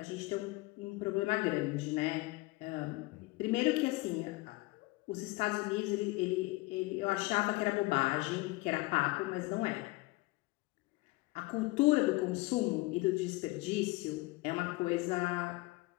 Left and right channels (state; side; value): quieter; right; 22.4 dB